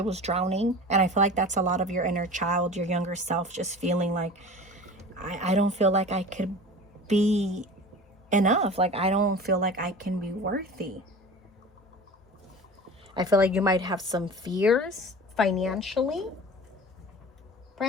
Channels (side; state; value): both; normal; correlation 0.37